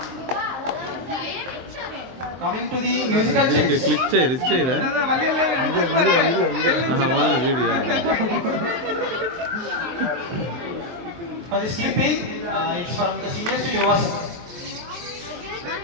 Coming to the musical chairs. Click చేయరా. For the skipping, it's from the seniors to Yuvasan.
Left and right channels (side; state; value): left; late; 23 ms